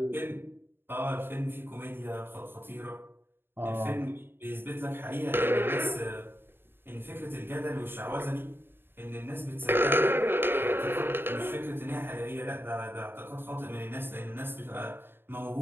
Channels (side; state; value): left; late; 0.10 ms